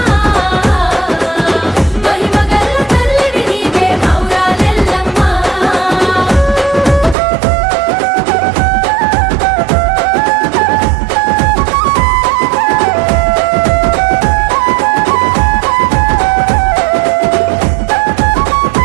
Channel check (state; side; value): drops out; left; at 7.2 s